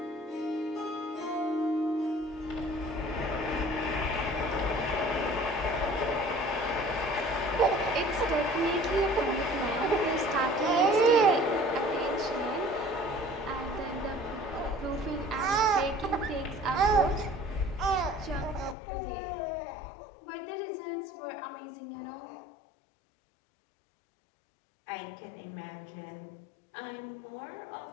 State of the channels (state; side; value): drops out; right; at 18.8 s